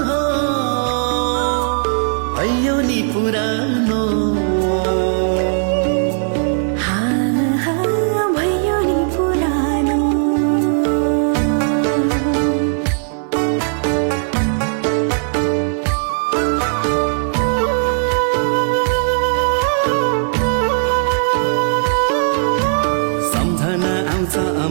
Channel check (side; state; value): left; silent; 65 dB below the other